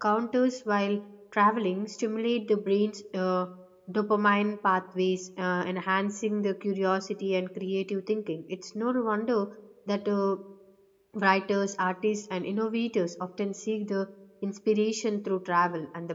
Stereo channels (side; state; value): both; identical; correlation 1.00